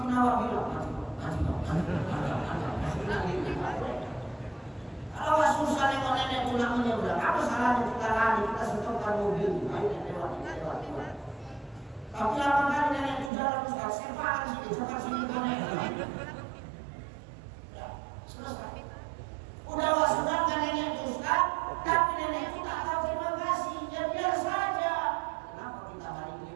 awak bilang, mati. Kalau susah nenek pulang menyeberang, apa salahnya kita lari, kita stopkan mobil, ayo lewat. Tapi lama kali nenek itu jalan Ustaz, sepakan sini nenek. Ya, selesai. Udah wasudan kan nenek itu Ustaz, tapi nenek itu tak tahu terima kasih, ya biar saja. Kenapa kita hari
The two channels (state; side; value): drops out; left; at 13.3 s